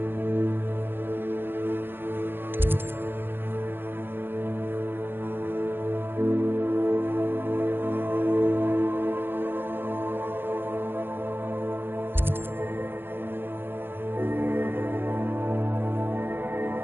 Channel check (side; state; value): left; late; 0.10 ms